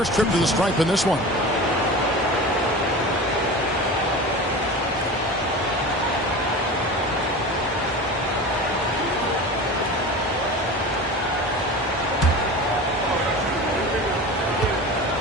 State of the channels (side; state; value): both; normal; correlation 0.32